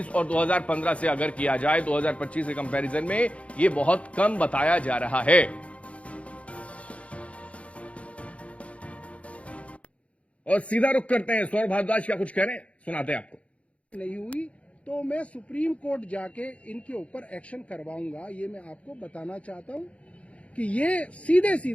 और 2015 से अगर किया जाए, 2025 के कंपैरिजन में ये बहुत कम बताया जा रहा है। और सीधा रुख करते हैं, सौरभ भारद्वाज क्या कुछ कह रहे हैं, सुनाते हैं आपको। नहीं हुई तो मैं सुप्रीम कोर्ट जाके इनके ऊपर एक्शन करवाऊंगा। ये मैं आपको बताना चाहता हूं कि ये सीधे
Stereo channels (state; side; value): late; right; 0.063 ms